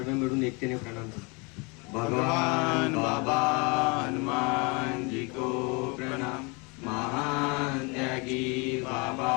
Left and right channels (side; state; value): right; quieter; 30.0 dB